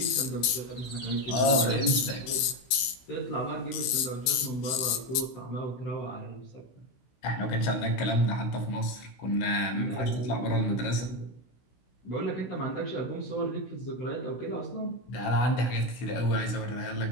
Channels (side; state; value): right; late; 16 ms